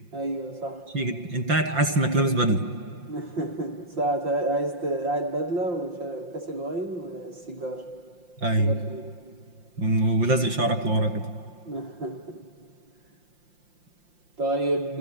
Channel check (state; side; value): late; left; 5.7 ms